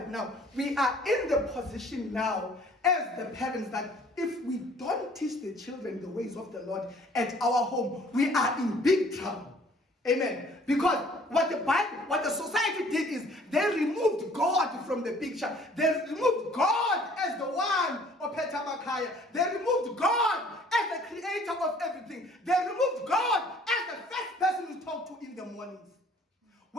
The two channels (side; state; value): both; normal; correlation 0.56